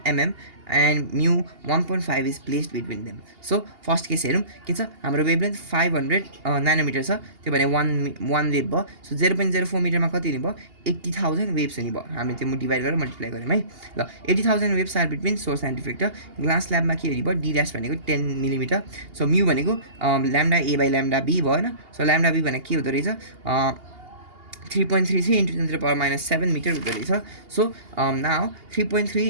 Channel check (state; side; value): late; left; 2.8 ms